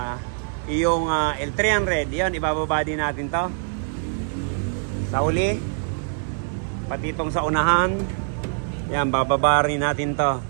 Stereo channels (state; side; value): silent; left; 63 dB below the other